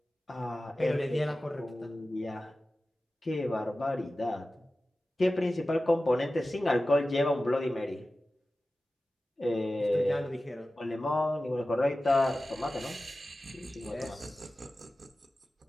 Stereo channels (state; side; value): normal; both; correlation 0.95